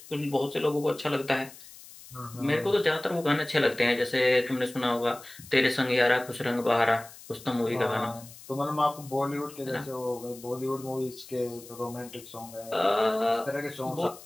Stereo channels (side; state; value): left; noise; hiss, 18 dB below the sound